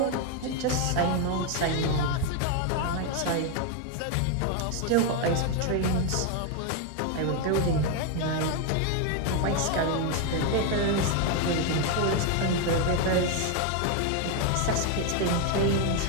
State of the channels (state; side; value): different; both; correlation 0.01